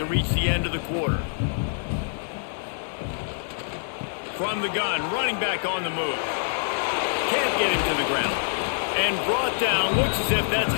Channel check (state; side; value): silent; right; 61 dB below the other